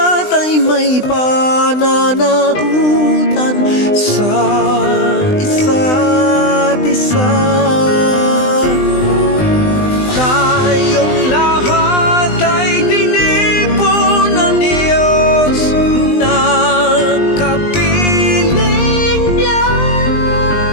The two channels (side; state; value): right; late; 20 ms